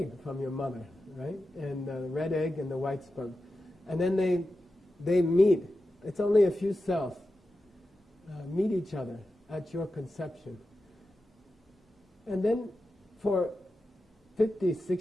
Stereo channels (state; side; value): normal; both; correlation 0.92